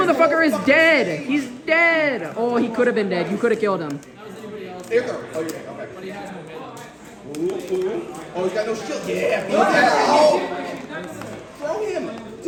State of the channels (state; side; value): identical; both; correlation 1.00